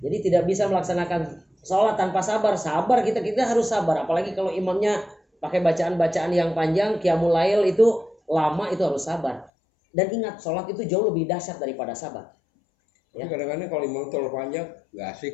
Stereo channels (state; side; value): drops out; right; at 9.5 s